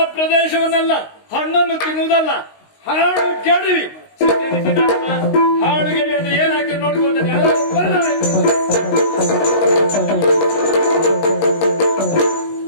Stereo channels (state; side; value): late; right; 19 ms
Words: ಪ್ರದೇಶವನ್ನೆಲ್ಲ ಹಣ್ಣನ್ನು ತಿನ್ನುವುದಲ್ಲ, ಹಾಡು ಕೆಡವಿ ಹಾಡು ಗೆಡಿ ಅಂದ್ರೆ ಏನಾಗ್ತದೆ ನೋಡ್ಕೊಳ್ತೇನೆ.